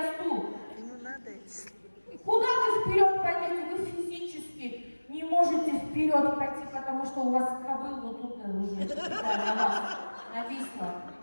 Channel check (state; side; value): inverted; both; correlation -1.00